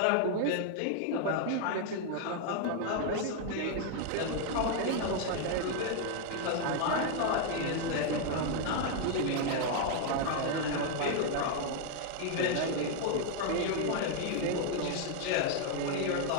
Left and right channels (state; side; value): different; both; correlation 0.00